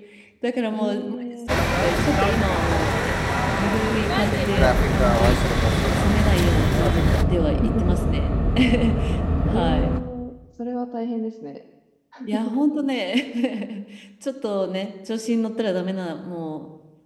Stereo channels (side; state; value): both; identical; correlation 1.00